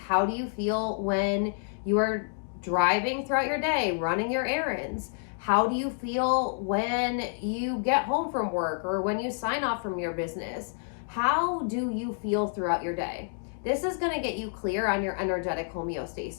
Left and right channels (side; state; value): right; silent; digital silence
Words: do you feel when you are driving throughout your day, running your errands? How do you feel when you get home from work or when you sign off from your business? How do you feel throughout your day? This is going to get you clear on your energetic